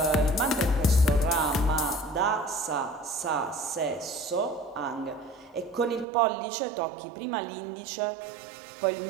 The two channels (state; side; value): drops out; left; at 6.1 s